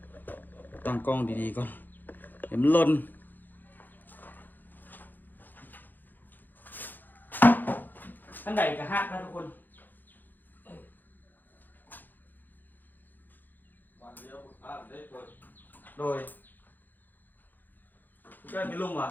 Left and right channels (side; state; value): right; late; 0.087 ms